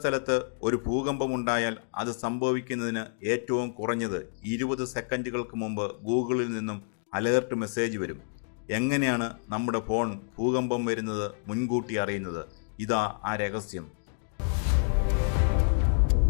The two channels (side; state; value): right; silent; digital silence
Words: ഒരു ഭൂകമ്പമുണ്ടായാൽ അത് സംഭവിക്കുന്നതിന് ഏറ്റവും കുറഞ്ഞത് 20 സെക്കൻഡുകൾക്ക് മുമ്പ് ഗൂഗിളിൽ നിന്നും അലേർട്ട് മെസ്സേജ് വരും. എങ്ങനെയാണ് നമ്മുടെ ഫോൺ ഭൂകമ്പം വരുന്നത് മുൻകൂട്ടി അറിയുന്നത്? ഇതാ ആ രഹസ്യം.